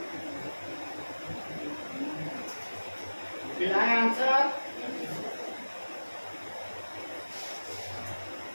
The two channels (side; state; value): both; inverted; correlation -1.00